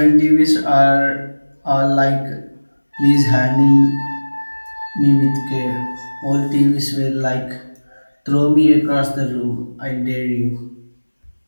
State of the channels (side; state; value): both; inverted; correlation -1.00